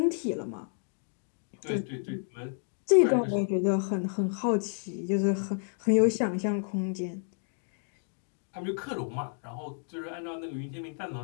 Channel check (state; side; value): silent; right; 57 dB below the other